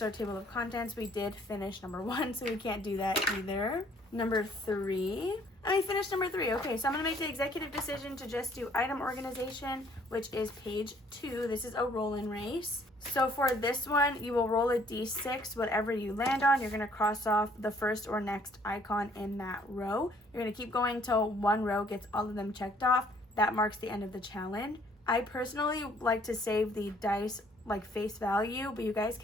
our table of contents. We did finish number 1, so we can't do that either. Number 3. I finished number 3. Okay, so I'm going to make the executive decision to just do item organization, which is page 2. This is a roll-in race. So for this one, you will roll a d6. Whatever you land on, you're going to cross off the first or next icon in that row. You're going to keep going till one row gets all of them checked off. That marks the end of the challenge. I personally like to save the dice like face value, but you guys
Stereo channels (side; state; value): both; normal; correlation 0.61